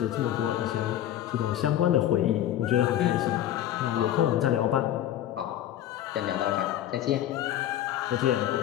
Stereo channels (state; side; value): quieter; right; 12.0 dB